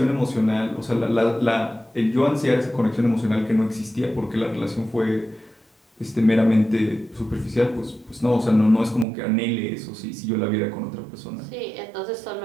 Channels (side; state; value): left; drops out; at 9.1 s